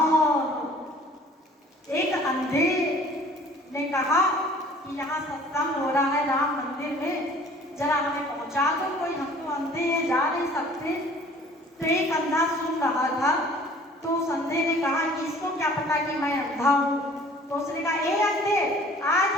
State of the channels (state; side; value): normal; both; correlation 0.51